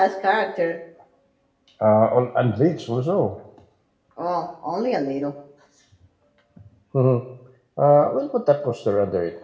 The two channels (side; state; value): both; identical; correlation 1.00